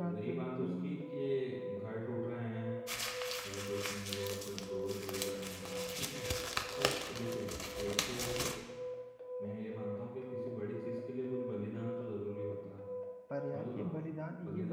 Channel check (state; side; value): identical; both; correlation 1.00